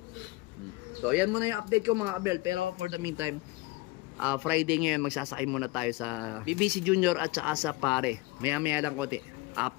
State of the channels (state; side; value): quieter; right; 21.6 dB